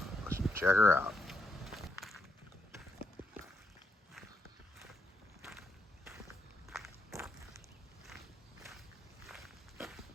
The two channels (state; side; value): normal; both; correlation 0.81